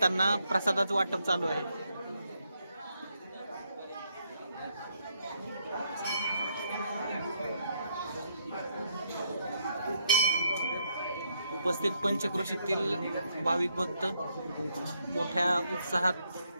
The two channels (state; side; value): inverted; both; correlation -0.75